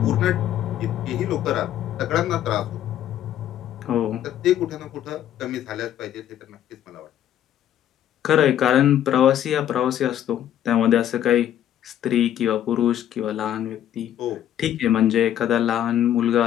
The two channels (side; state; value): right; quieter; 11.1 dB